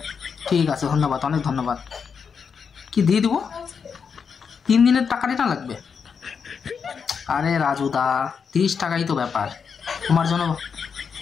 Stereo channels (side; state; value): right; quieter; 6.3 dB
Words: ঠিক আছে, ধন্যবাদ, অনেক ধন্যবাদ। কি দিয়ে দিব? 3 দিনের টাকা রিটার্ন লাগবে? আরে রাজুদা, 30 টাকাই তো ব্যাপার, তোমার জন্য